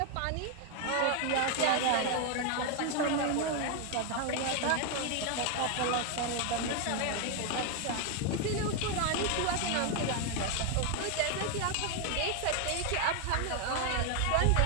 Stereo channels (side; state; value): both; different; correlation 0.01